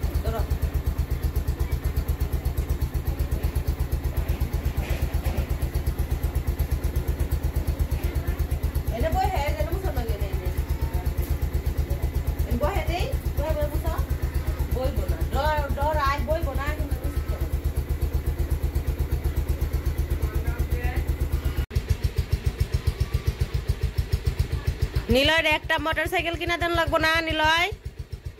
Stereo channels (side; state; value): both; identical; correlation 1.00